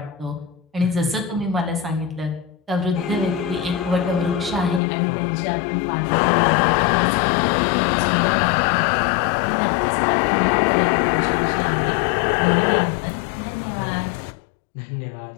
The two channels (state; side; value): drops out; right; at 4.8 s